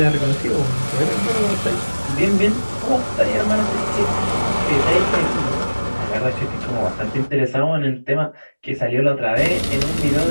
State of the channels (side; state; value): both; inverted; correlation -1.00